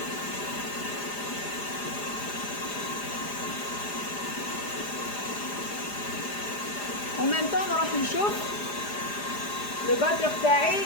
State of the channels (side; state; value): right; late; 4.9 ms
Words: en même temps نروح نشوف لو باتور